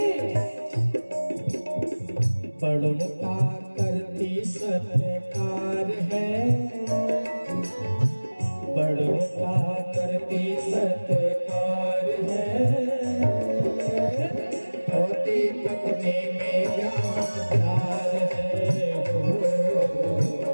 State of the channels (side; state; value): both; inverted; correlation -1.00